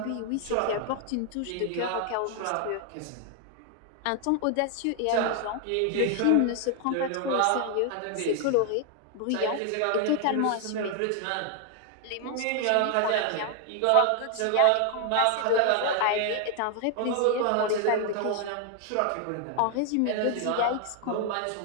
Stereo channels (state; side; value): different; both; correlation 0.00